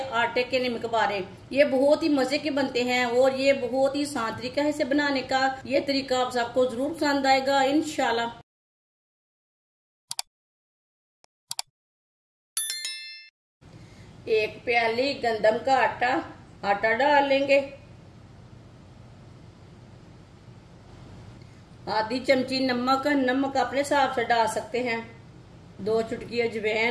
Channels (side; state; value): both; identical; correlation 1.00